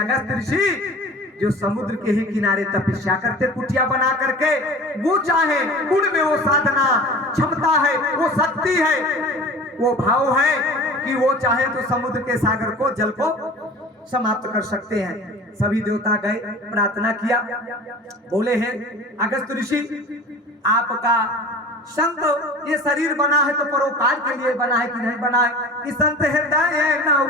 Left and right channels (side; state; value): both; normal; correlation 0.39